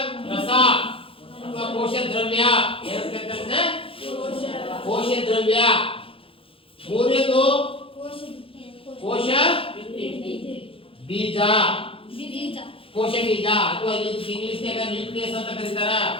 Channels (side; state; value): right; late; 0.27 ms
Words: ರಸ ಅಥವಾ ಕೋಶ ದ್ರವ್ಯ. ಕೋಶ ದ್ರವ್ಯ. ಮೂರನೇದು ಕೋಶ ಬೀಜ. ಕೋಶ ಬೀಜ ಅಥವಾ ಇಂಗ್ಲಿಷ್ ನ್ಯೂಕ್ಲಿಯಸ್ ಅಂತ ಕರೀತಾರ.